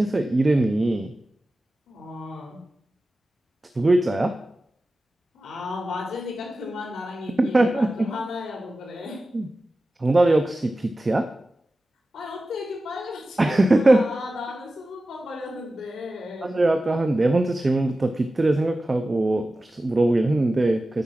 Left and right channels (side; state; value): both; normal; correlation 0.95